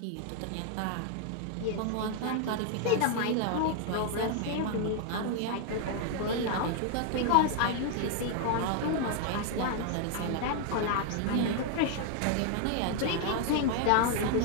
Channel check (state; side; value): different; both; correlation 0.00